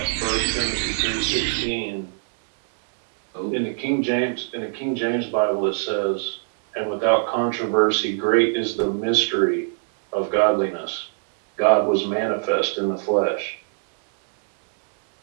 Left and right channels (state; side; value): silent; left; digital silence